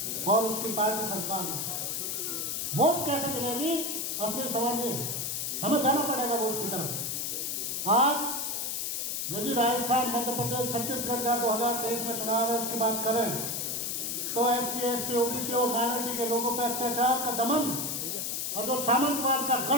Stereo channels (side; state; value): left; noise; hiss, 2 dB below the sound